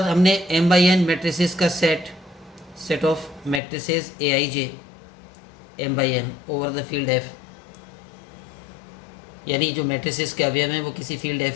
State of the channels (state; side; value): drops out; right; at 3.6 s